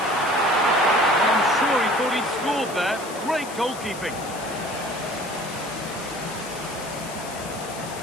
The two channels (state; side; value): noise; left; hiss, 14 dB below the sound